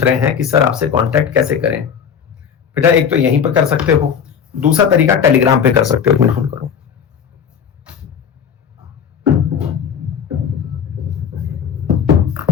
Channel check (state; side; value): quieter; right; 7.5 dB